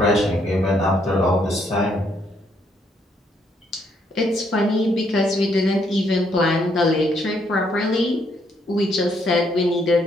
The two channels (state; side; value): normal; both; correlation 0.71